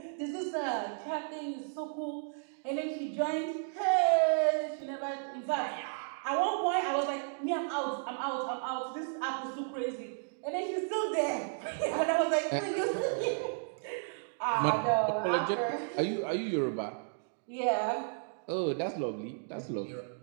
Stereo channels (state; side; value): silent; left; digital silence